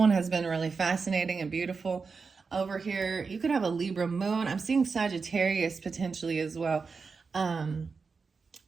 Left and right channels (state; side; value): quieter; left; 4.9 dB